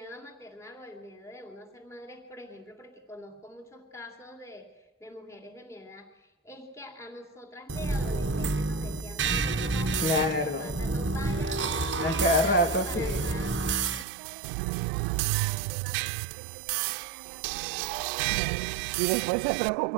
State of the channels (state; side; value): drops out; left; at 14.1 s